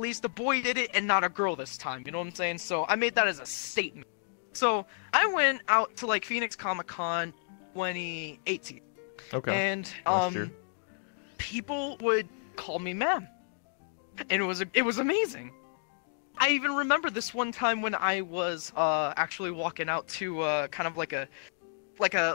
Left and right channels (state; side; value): silent; right; digital silence